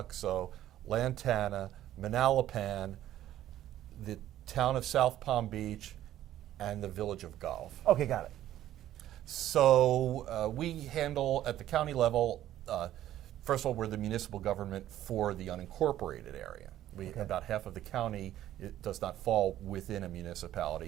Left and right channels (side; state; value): left; quieter; 12.8 dB